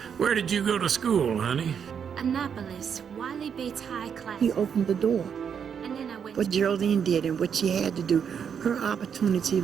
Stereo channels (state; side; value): quieter; left; 7.4 dB